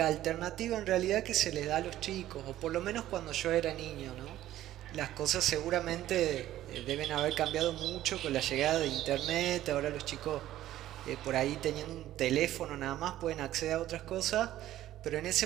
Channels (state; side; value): quieter; left; 13.6 dB